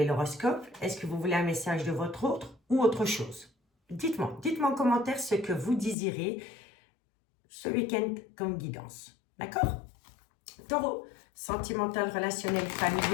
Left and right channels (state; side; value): drops out; right; at 6.0 s